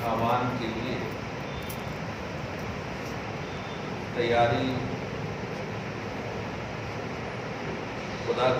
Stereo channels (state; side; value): identical; both; correlation 1.00